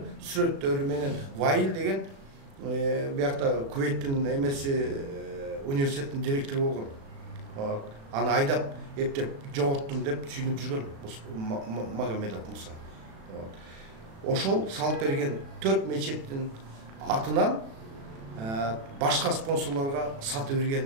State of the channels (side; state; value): left; late; 36 ms